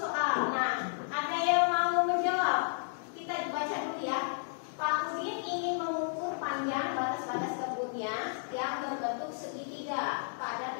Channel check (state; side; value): silent; right; digital silence